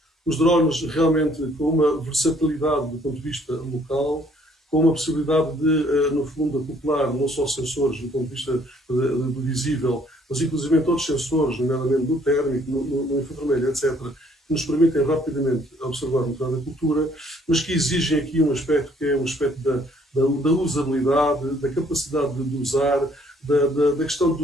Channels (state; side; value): normal; both; correlation 0.62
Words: Os drones realmente com uma versatilidade do ponto de vista local, com uma possibilidade de, no fundo, acoplar não só sensores do ponto de vista do visível, mas inclusive outros sensores, nomeadamente do térmico, no infravermelho, etc., que nos permitem rapidamente observar o estado da cultura, mas que exigem aqui um aspecto que é um aspecto da usabilidade, da capacidade de usar, da questão